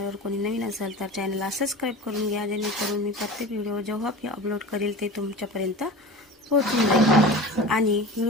कोणी नवीन असेल तर चॅनलला सबस्क्राईब करून घ्या, जेणेकरून मी प्रत्येक व्हिडिओ जेव्हा मी अपलोड करेल ते तुमच्यापर्यंत पोहोचून जाईल. आणि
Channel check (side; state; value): both; normal; correlation 0.34